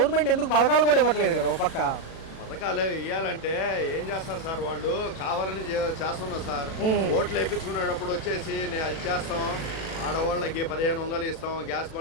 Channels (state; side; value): late; right; 37 ms